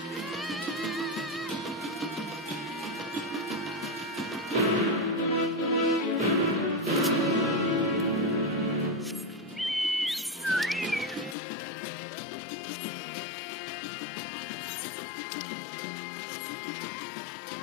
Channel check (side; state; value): right; drops out; at 11.4 s